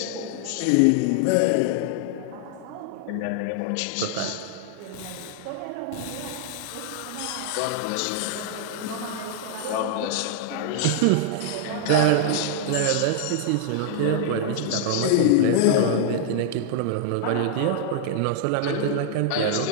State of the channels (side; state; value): both; different; correlation -0.01